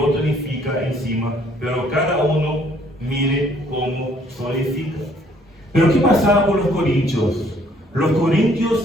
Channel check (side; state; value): both; normal; correlation 0.62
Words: edifica encima, pero cada uno mire cómo solidifica. Pero ¿qué pasaba con los corintios? Los